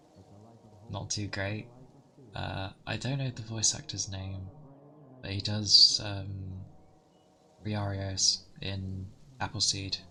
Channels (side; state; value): both; identical; correlation 1.00